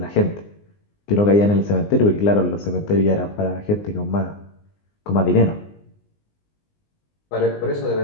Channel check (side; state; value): right; late; 19 ms